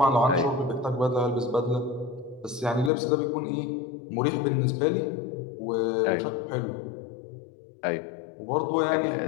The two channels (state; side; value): drops out; right; at 2.9 s